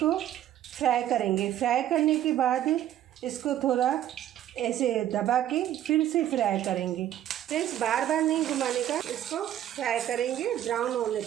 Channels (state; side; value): quieter; left; 11.8 dB